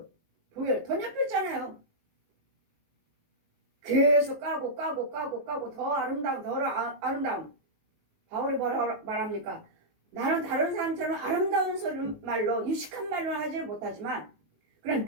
번역했잖아요. 계속 까고 더 아름다움. 바울이 뭐라 말합니까? 나는 다른 사람처럼 아름다운 소리 말로 유식한 말로 하지 못하지만 그런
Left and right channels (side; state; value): left; late; 19 ms